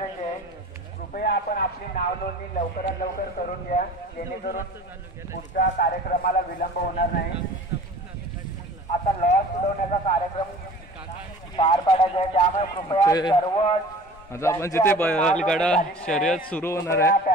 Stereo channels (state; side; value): normal; both; correlation 0.43